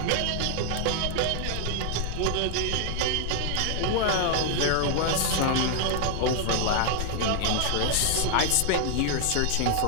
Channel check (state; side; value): different; both; correlation 0.00